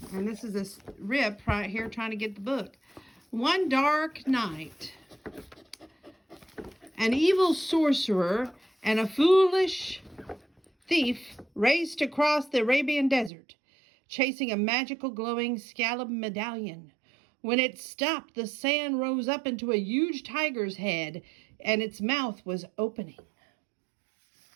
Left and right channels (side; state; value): left; drops out; at 13.3 s